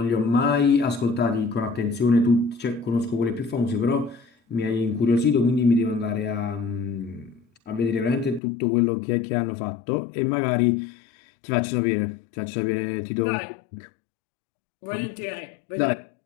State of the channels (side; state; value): right; drops out; at 8.4 s